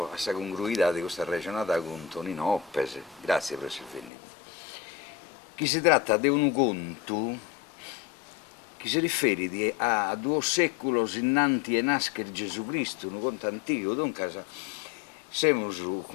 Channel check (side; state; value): right; drops out; at 4.1 s